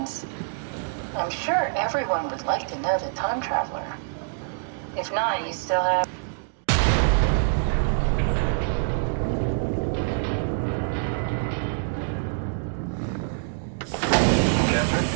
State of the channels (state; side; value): silent; left; digital silence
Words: I'm sure everyone would like to know the time traveler. If not, you still have... Catherine?